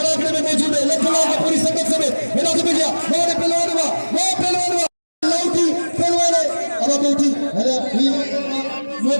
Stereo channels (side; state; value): both; inverted; correlation -1.00